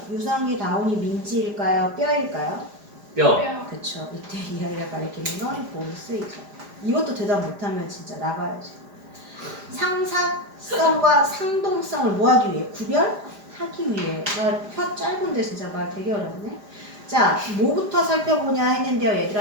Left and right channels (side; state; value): left; late; 5.0 ms